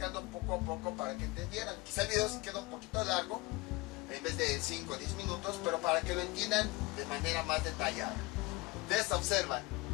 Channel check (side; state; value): right; quieter; 22.7 dB